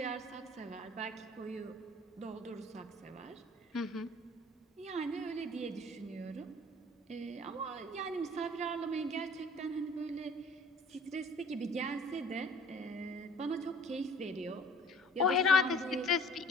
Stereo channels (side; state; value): both; normal; correlation 0.50